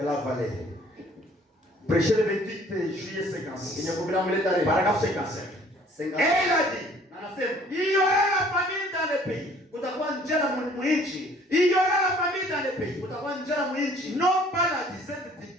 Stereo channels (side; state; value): both; normal; correlation 0.56